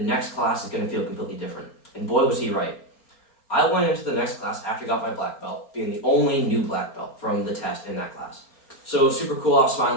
class is going to feel completely different. And boy, was he right. I went into the next class after I got my black belt, being the only new black belt from the test in that class. So it was super cool. I was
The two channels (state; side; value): late; right; 4.3 ms